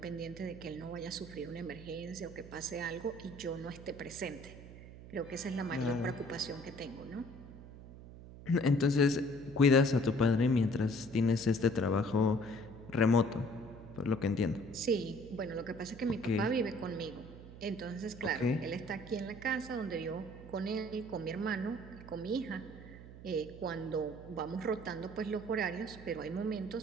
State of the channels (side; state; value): right; noise; hum, 15 dB below the sound